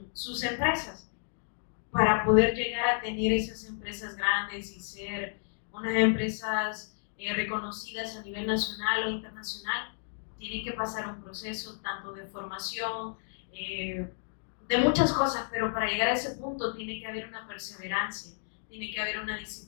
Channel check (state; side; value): silent; right; digital silence